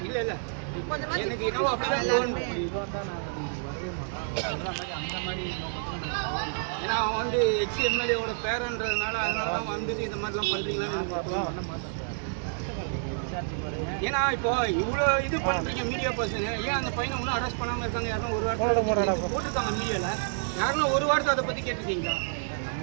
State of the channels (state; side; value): silent; left; 59 dB below the other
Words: இல்ல இல்ல எனக்கு இன்னும் அப்படிதான் தோணுது. ஏன்னா அவன் வந்து எக்ஸ்-எம்எல்ஏவோட பேரன்றதுனால அதனால தான் வந்துட்டு இந்த மாதிரிலாம் பண்றீங்களான்னு பண்ண மாட்டேன். ஏன்னா இப்போ இவ்வளோ இது பண்ணுறீங்க மீடியா பர்சன், ஏன் அந்த பையனை ஒன்றும் அரெஸ்ட் பண்ணாமல் இருக்காங்க? யாரும் ஒரு வாரத்தில் போட்டுருக்காங்க மீடியாவில், யாருன்னா ஒரு வாரத்தை அதை பற்றி கேட்டுருக்கீங்களா?